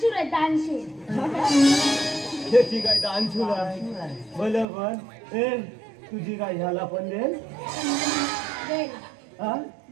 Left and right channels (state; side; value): drops out; left; at 4.7 s